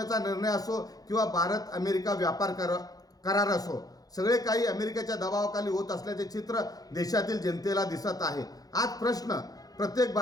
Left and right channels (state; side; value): late; right; 0.18 ms